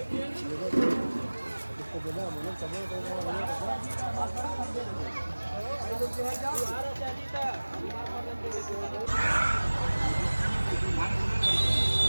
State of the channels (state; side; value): inverted; both; correlation -1.00